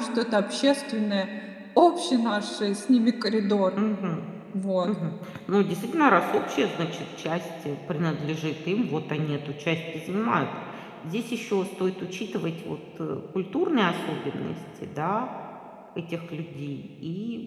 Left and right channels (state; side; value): identical; both; correlation 1.00